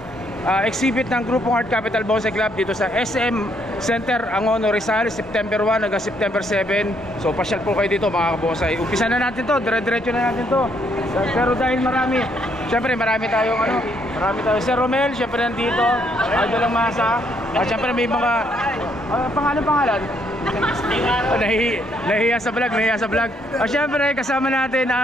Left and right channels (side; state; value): both; normal; correlation 0.71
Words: exhibit ng grupong Art Capital Bonsai Club dito sa SM Center, Angono, Rizal, September 1 hanggang September 7. So pasyal po kayo dito mga kabosay. Umpisa na natin to, dire-diretso na natin to. Pero dahil marami tayong marami tayong Sir Romel, syempre nandito, Idol lang Masa. Syempre may mga pangalan. Nahiya sa vlog. Syempre kasama natin